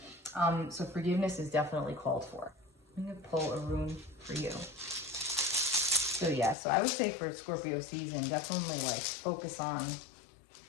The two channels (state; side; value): drops out; right; at 6.6 s